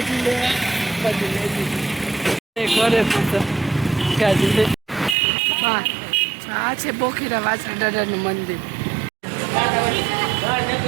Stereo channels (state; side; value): drops out; left; at 5.2 s